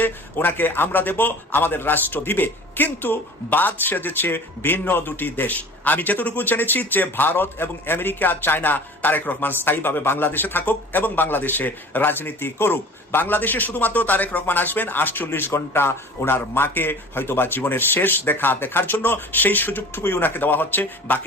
ওনাকে আমরা দেব, আমাদের রাষ্ট্র দিবে। কিন্তু বাদ সেজেছে ভিন্ন দুটি দেশ। আমি যতটুকু জেনেছি যে ভারত এবং আমেরিকা চায় না তারেক রহমান স্থায়ীভাবে বাংলাদেশে থাকুক এবং বাংলাদেশে রাজনীতি করুক। বাংলাদেশে শুধুমাত্র তারেক রহমান আসবেন 48 ঘন্টা ওনার মাকে হয়তোবা জীবনের শেষ দেখার জন্য, সেই সুযোগটুকুই ওনাকে দেওয়া হচ্ছে।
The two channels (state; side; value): normal; both; correlation 0.42